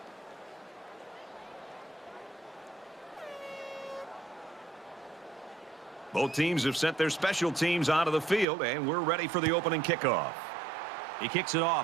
Both teams have sent their special teams onto the field, and we're ready for the opening kickoff. He kicks it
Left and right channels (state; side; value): drops out; left; at 8.5 s